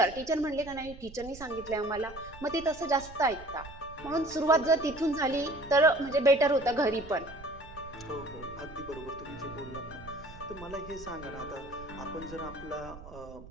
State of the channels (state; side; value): noise; right; rumble, 16 dB below the sound